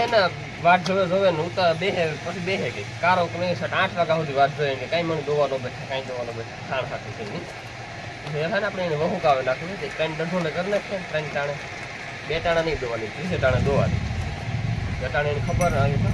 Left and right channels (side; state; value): both; identical; correlation 1.00